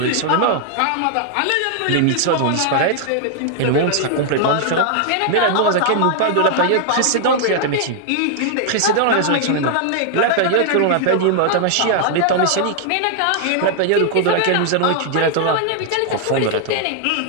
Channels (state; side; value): different; both; correlation 0.00